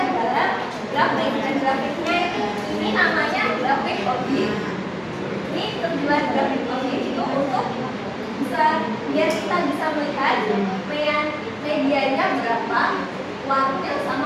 dalam grafik, dan grafiknya ini namanya grafik ogif. Ini tujuan grafik ogif itu untuk biar kita bisa melihat medianya berapa, warnanya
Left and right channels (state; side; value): identical; both; correlation 1.00